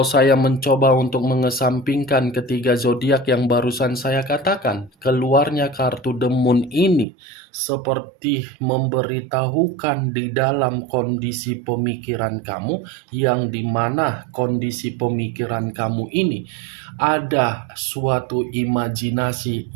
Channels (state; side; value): drops out; left; at 7.1 s